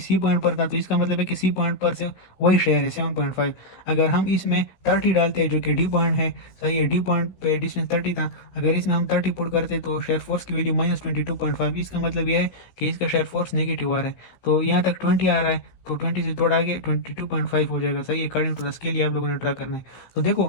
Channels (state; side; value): late; right; 16 ms